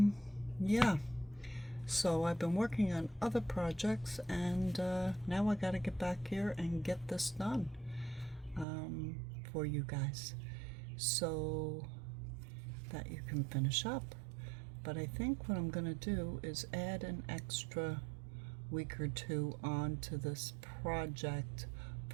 Yeah. So I've been working on other projects, and now I gotta get back here and get this done for you guys, so that you can finish up. But I think what I'm going to do is add an extra week or two onto this project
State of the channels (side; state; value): left; drops out; at 8.7 s